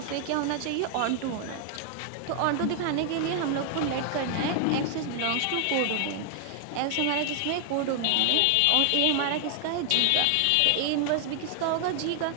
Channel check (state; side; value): different; both; correlation 0.00